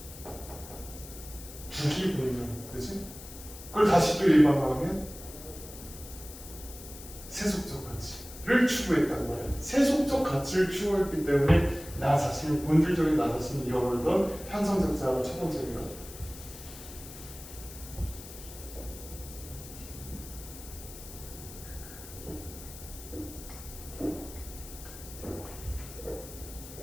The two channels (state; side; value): noise; left; hiss, 15 dB below the sound